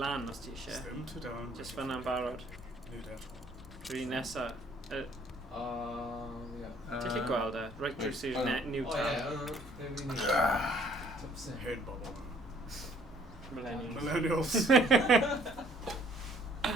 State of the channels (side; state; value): both; normal; correlation 0.60